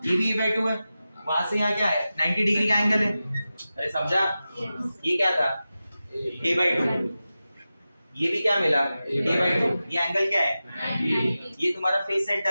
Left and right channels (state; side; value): inverted; both; correlation -0.94